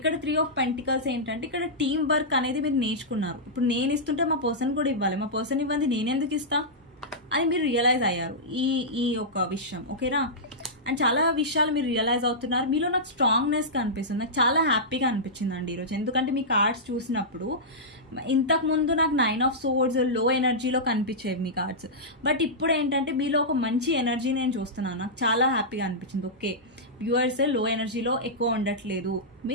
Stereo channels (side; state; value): both; normal; correlation -0.13